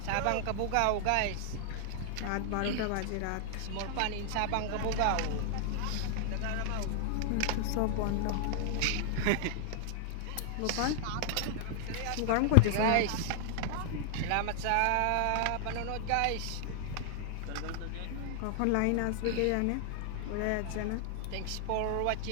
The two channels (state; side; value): different; both; correlation -0.01